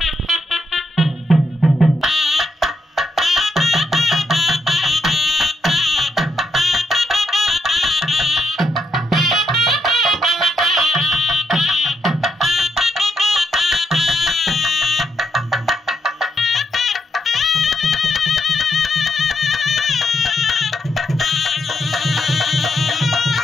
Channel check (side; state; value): both; normal; correlation 0.80